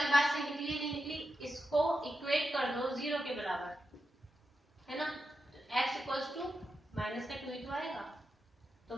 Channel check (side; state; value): both; normal; correlation 0.88